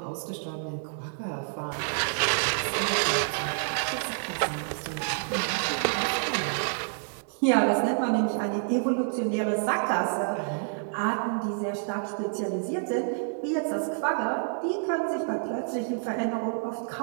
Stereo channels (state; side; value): silent; left; digital silence